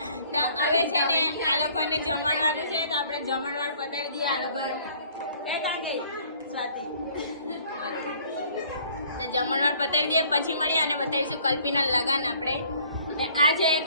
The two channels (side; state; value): both; inverted; correlation -0.57